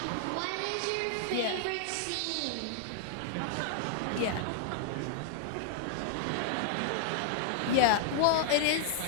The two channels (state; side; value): different; both; correlation -0.01